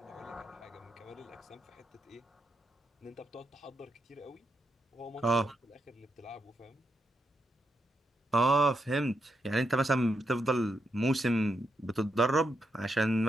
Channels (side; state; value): both; normal; correlation 0.82